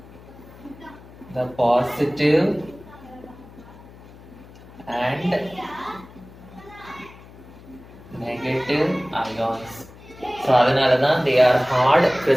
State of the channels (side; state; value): left; noise; hum, 20 dB below the sound